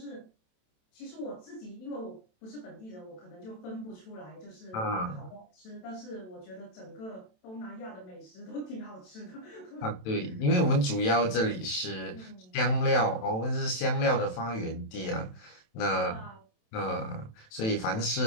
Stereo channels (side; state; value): right; late; 27 ms